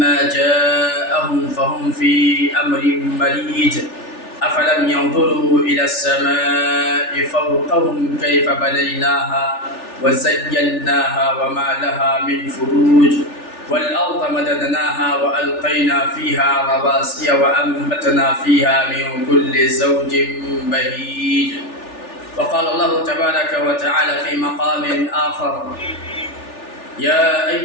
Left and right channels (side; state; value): right; late; 3.4 ms